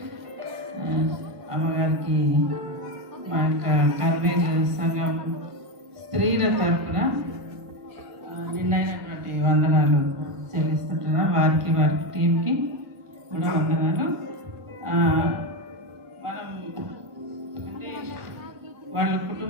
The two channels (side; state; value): left; late; 1.5 ms